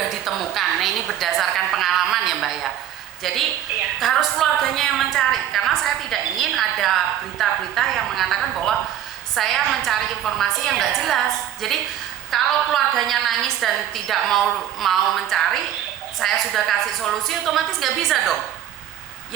ditemukan. Nah, ini berdasarkan pengalaman ya, Mbak ya. Jadi harus keluarganya yang mencari, karena saya tidak ingin ada berita-berita yang mengatakan bahwa saya mencari informasi yang nggak jelas. Jadi kalau keluarganya nangis dan tidak mau mencari, saya sudah kasih solusi, otomatis nggak bisa dong.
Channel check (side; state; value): left; quieter; 11.1 dB